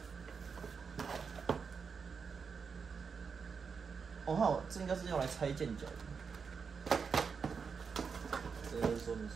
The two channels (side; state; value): left; quieter; 5.8 dB